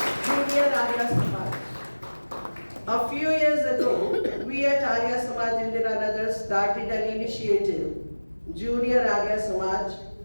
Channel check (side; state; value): both; inverted; correlation -1.00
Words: Junior Arya Samaj. A few years ago, we at Arya Samaj Indiranagar started an initiative, Junior Arya Samaj,